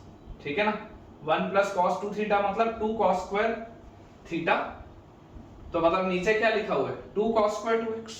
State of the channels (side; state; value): both; identical; correlation 1.00